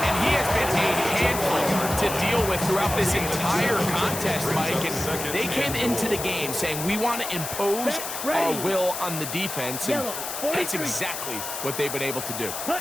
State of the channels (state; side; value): noise; left; hiss, 6 dB below the sound